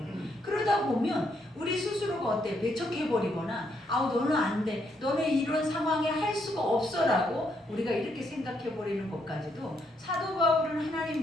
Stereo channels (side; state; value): both; normal; correlation 0.75